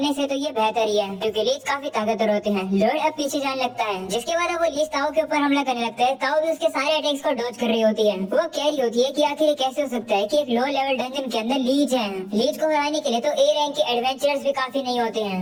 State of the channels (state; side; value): identical; both; correlation 1.00